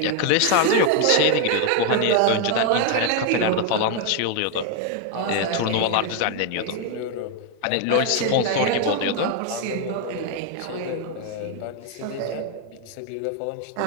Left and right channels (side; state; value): both; different; correlation 0.00